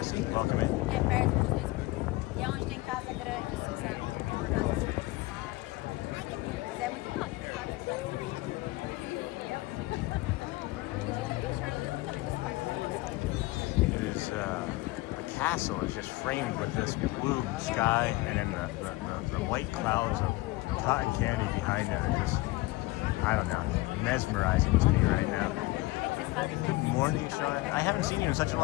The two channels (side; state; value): right; quieter; 20.4 dB